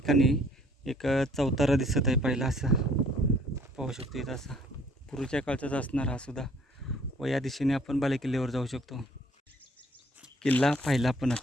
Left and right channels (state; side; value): normal; both; correlation 0.59